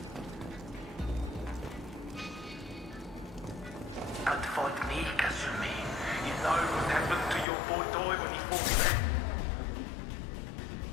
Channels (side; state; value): right; drops out; at 7.5 s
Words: Don't fight me, Kasumi. You know what happened to your boy Doi when he fought back.